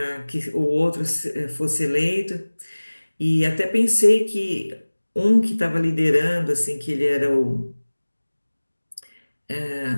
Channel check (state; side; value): inverted; both; correlation -1.00